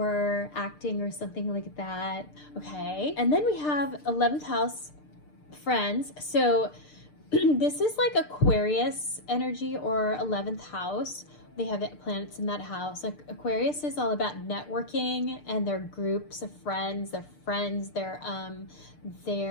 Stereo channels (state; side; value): late; right; 6.7 ms